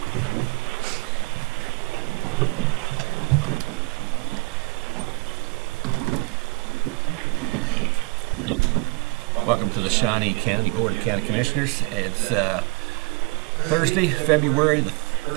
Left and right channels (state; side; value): quieter; left; 28.5 dB